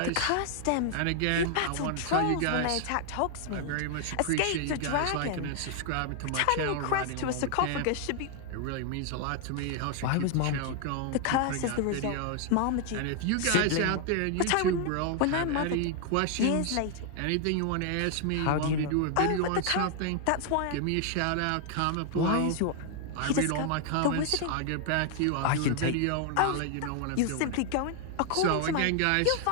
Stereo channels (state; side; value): different; both; correlation 0.00